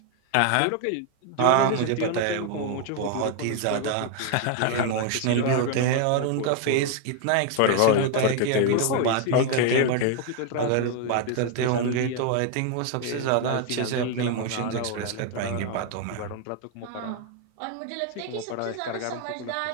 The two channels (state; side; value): different; both; correlation 0.00